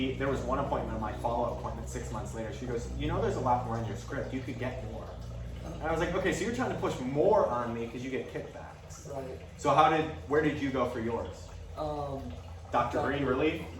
there was one appointment, my follow-up appointment 6 months later. She goes, you know, there's a lot more in your script. You could get more. And I was like, okay, so you're trying to push more on me because you get kickbacks. Right. So where did you go for yours? Dr. Green, Relief?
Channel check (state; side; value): identical; both; correlation 1.00